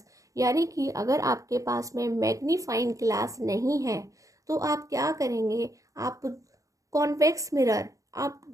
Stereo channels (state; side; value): late; left; 0.16 ms